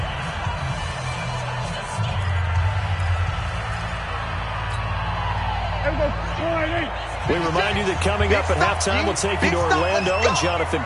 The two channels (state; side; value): identical; both; correlation 1.00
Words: We remind you that coming up at halftime, we'll take you to Orlando and Jonathan